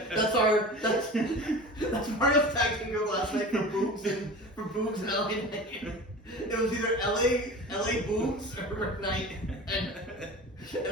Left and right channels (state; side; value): normal; both; correlation 0.35